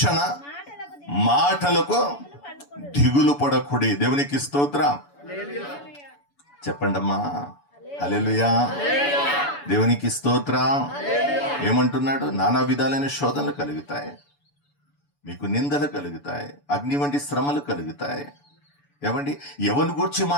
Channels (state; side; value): late; right; 7.0 ms